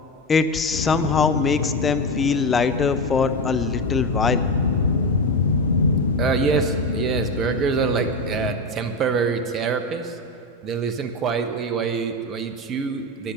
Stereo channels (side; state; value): both; normal; correlation 0.16